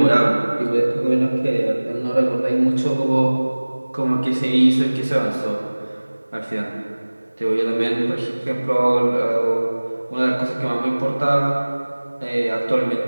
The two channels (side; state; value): both; inverted; correlation -1.00